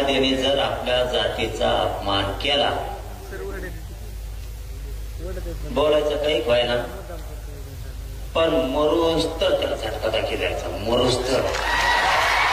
जर आपल्या जातीचा अपमान केला, बोलायचं काही व्हायना, पण मरूस तर त्याला झटका दाखी द्यायचा, मरूस तर.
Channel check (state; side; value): identical; both; correlation 1.00